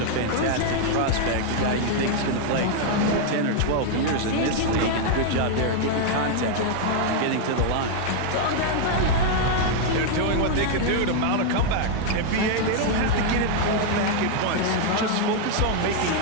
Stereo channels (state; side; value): different; both; correlation 0.00